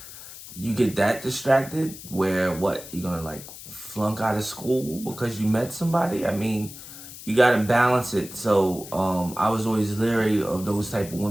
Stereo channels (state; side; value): noise; left; hiss, 14 dB below the sound